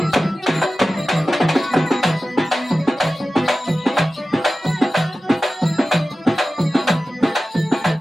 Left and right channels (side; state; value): both; normal; correlation 0.95